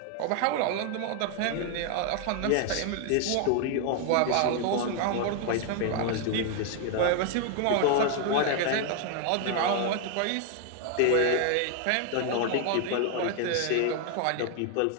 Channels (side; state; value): both; different; correlation 0.00